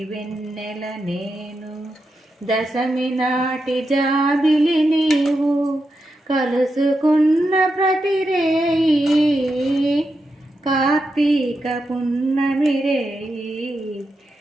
వెన్నెల నేను, దశమి నాటి జాబిలి నీవు, కలుసుకున్న ప్రతి రేయి కార్తీక పున్నమి రేయి.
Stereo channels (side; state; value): both; normal; correlation 0.87